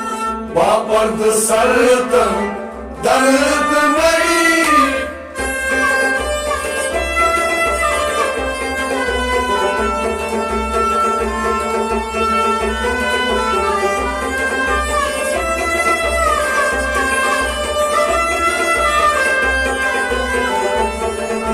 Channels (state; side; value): identical; both; correlation 1.00